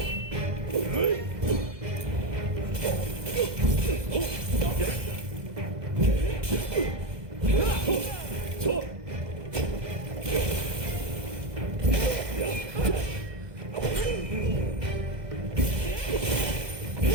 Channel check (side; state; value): left; late; 2.0 ms